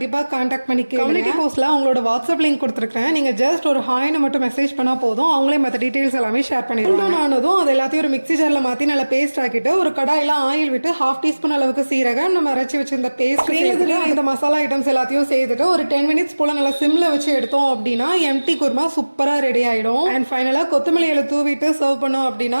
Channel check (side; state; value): both; inverted; correlation -1.00